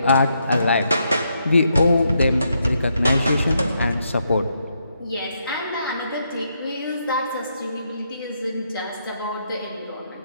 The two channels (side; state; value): both; inverted; correlation -0.78